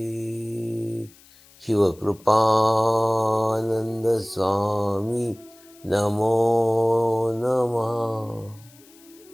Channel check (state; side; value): noise; left; hiss, 26 dB below the sound